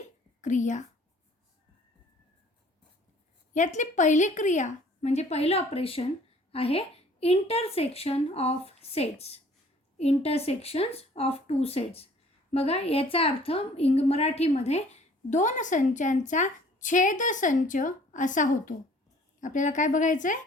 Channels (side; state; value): both; normal; correlation 0.54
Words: क्रिया यातली पहिली क्रिया म्हणजे पहिलं ऑपरेशन आहे intersection of sets. Intersections of two sets. बघा याचा अर्थ मराठीमध्ये दोन संचांचा छेदसंच असा होतो. आपल्याला काय बघायचं आहे?